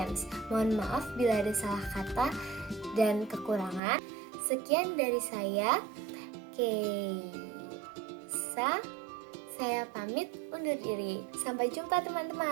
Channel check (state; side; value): drops out; left; at 3.8 s